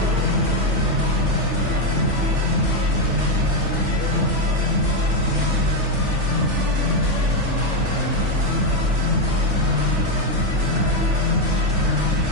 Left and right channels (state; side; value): late; left; 3.4 ms